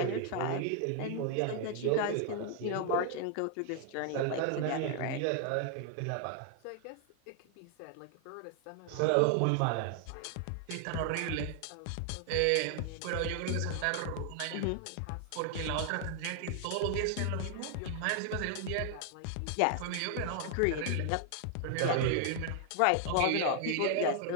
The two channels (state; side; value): different; both; correlation 0.00